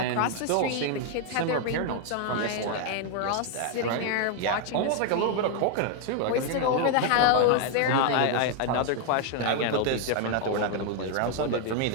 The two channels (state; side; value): different; both; correlation 0.00